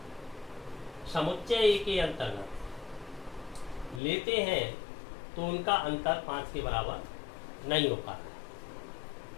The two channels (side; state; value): right; drops out; at 4.0 s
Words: समुच्चय ए के अंतर्गत लेते हैं तो उनका अंतर 5 के बराबर नहीं हो पाता